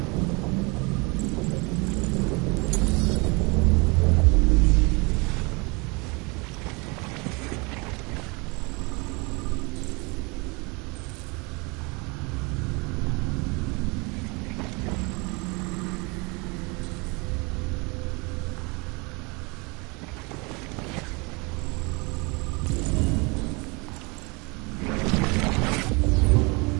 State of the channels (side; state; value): left; quieter; 28.5 dB